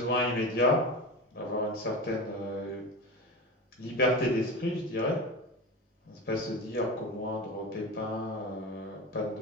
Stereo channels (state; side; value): normal; both; correlation 0.26